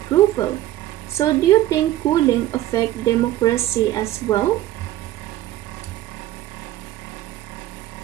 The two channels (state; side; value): quieter; left; 14.2 dB